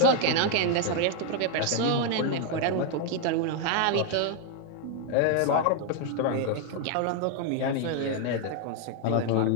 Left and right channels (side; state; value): both; different; correlation 0.01